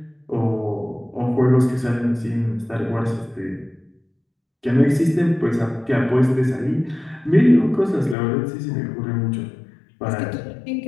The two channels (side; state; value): right; drops out; at 8.2 s